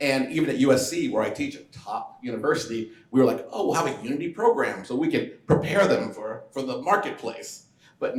even at USC, where I teach, a top university, we were like, "Oh, we'll have a Unity program so we can prepare them for the marketplace." But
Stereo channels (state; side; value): identical; both; correlation 1.00